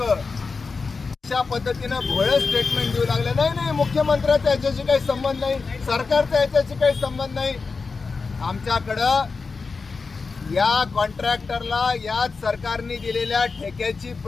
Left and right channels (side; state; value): right; quieter; 4.5 dB